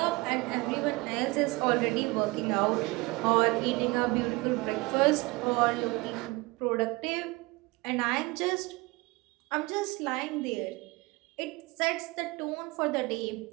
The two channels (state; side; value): quieter; left; 23.9 dB